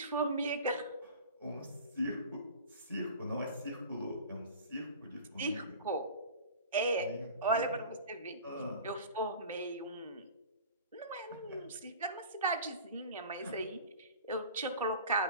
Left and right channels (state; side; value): inverted; both; correlation -0.39